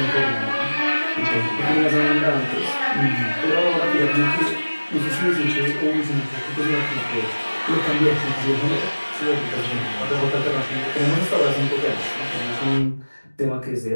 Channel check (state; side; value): inverted; both; correlation -1.00